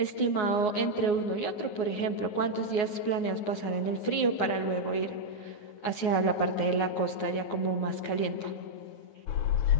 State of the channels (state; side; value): late; right; 9.6 ms